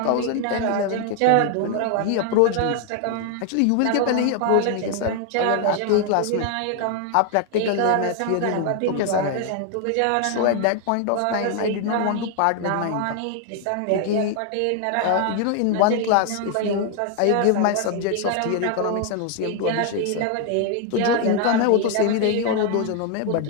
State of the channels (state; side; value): different; both; correlation 0.00